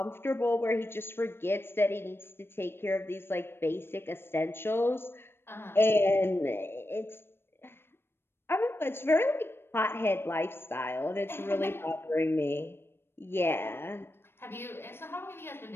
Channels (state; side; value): late; right; 0.11 ms